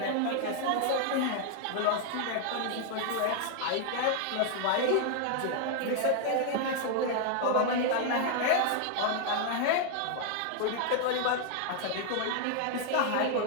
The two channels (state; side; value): different; both; correlation 0.00